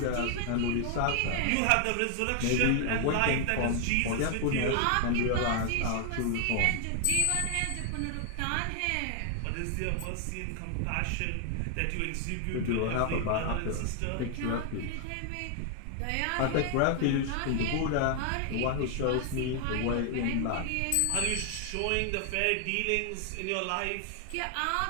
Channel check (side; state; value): both; different; correlation 0.00